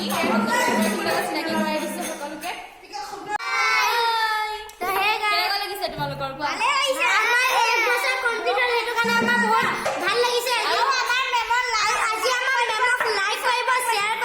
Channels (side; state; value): both; identical; correlation 1.00